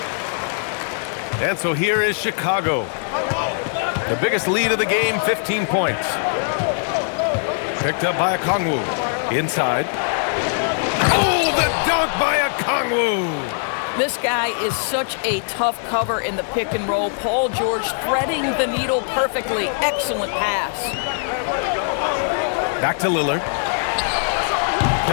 And so here is Chicago. The biggest lead of the game, 15 points. Picked up by Okongwu. Inside. Oh, the dunk by Okongwu! This guy is such a tough cover in the pick and roll. Paul George threading the needle perfectly. Excellent pass. Back to Lillard.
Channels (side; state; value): right; silent; 65 dB below the other